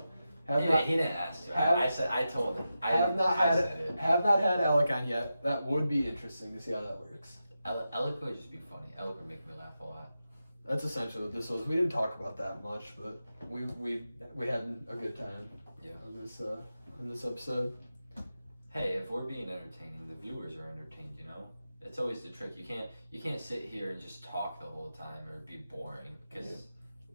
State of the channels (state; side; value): inverted; both; correlation -0.90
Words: He didn't ask. I told him. Have not said it. had Alec on yet. That would be interesting to see how that works. Alec would just be funny. Alec would make me laugh a lot. That's essentially what this was. We didn't talk about that much, but we had a good time. Yeah. On this episode. Hey, if we're being entertaining, the viewers are entertained. You know, it's always the trick. You can't sit here and just talk the whole time or it'd be boring. Because